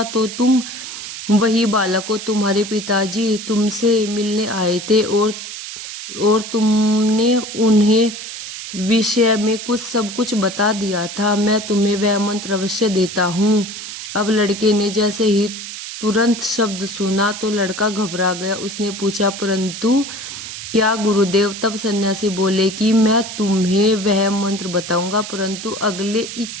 तो तुम वही बालक हो। तुम्हारे पिताजी तुमसे मिलने आए थे और तुमने उन्हें विषय में सब कुछ बता दिया था। मैं तुम्हें वह मंत्र अवश्य देता हूँ। अब लड़के ने जैसे ही तुरंत शब्द सुना तो लड़का घबरा गया। उसने पूछा, परंतु क्या गुरुदेव? तब सन्यासी बोले कि मैं तुम्हें वह मंत्र बताऊंगा, परंतु अगले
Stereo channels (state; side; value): noise; right; hiss, 9 dB below the sound